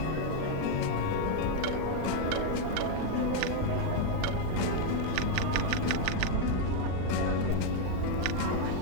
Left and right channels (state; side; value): different; both; correlation 0.01